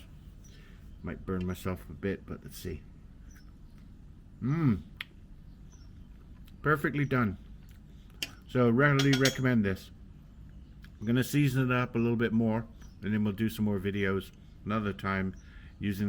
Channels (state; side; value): identical; both; correlation 1.00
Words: Might burn myself a bit, but let's see. Perfectly done. So readily recommend this. I'm going to season it up a little bit more, and then we'll do some more videos another time